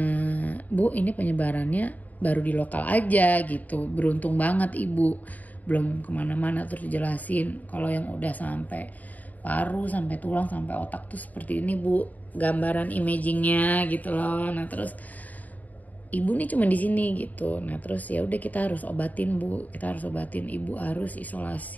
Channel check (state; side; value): late; right; 0.077 ms